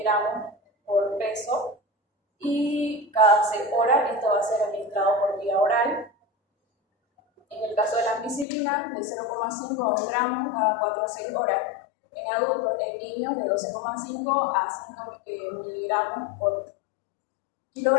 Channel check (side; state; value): right; drops out; at 8.5 s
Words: por peso y cada 6 horas esto va a ser administrado por vía oral. En el caso de la ampicilina, de 0,5 a 1 gramo cada 4 a 6 horas. En adultos, en niños, de 12,5 a 5 miligramos por